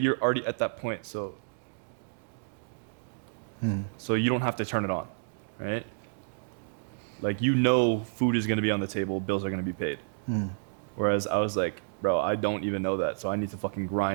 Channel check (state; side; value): silent; left; digital silence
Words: already at that point, so you don't have to turn it on, right? Like, you know, food is going to be on the table, bills are going to be paid. Whereas I was like, bro, I don't even know that, so I need to fucking